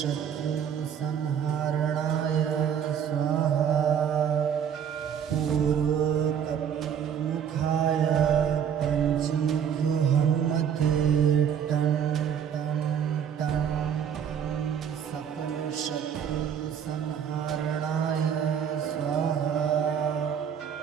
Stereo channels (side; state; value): left; quieter; 8.3 dB